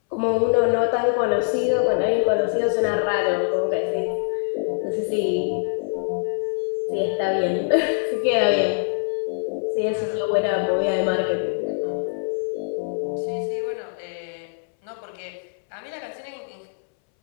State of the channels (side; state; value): right; silent; 63 dB below the other